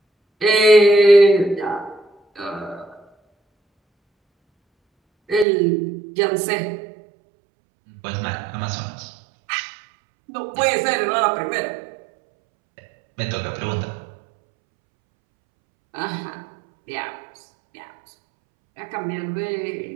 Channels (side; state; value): left; drops out; at 5.5 s